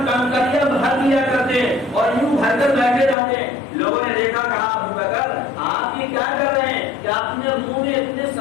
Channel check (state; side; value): drops out; right; at 3.2 s